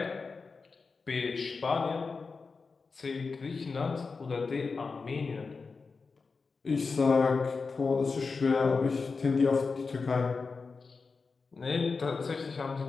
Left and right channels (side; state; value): right; quieter; 4.5 dB